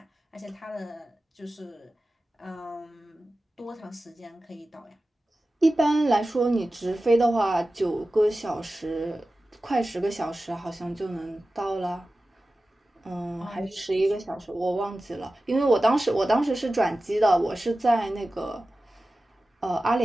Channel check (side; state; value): both; normal; correlation 0.95